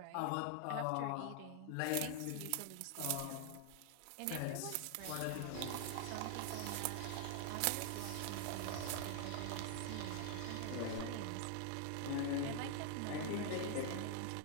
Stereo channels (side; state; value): both; different; correlation 0.00